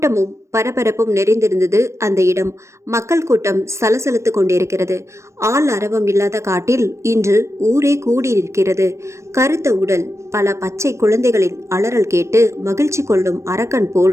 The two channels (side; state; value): left; late; 0.14 ms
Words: பரபரப்பும் நிறைந்திருந்தது அந்த இடம். மக்கள் கூட்டம் சலசலத்து கொண்டிருக்கிறது. ஆள் அரவம் இல்லாத காட்டில் இன்று ஊரே கூடியிருக்கிறது. கருத்த உடல், பல பச்சை குழந்தைகளின் அலறல் கேட்டு மகிழ்ச்சி கொள்ளும் அரக்கன்